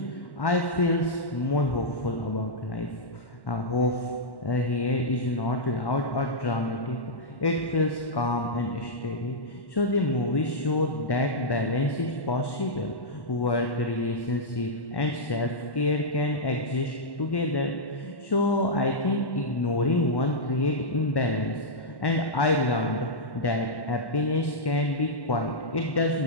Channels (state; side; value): late; right; 1.1 ms